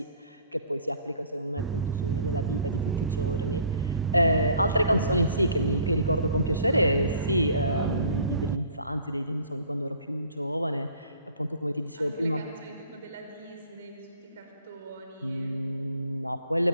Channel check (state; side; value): inverted; both; correlation -0.52